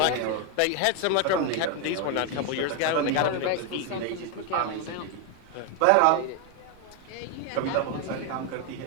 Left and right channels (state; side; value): different; both; correlation 0.01